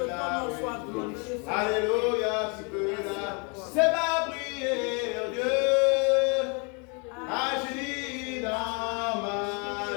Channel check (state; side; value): quieter; right; 34.2 dB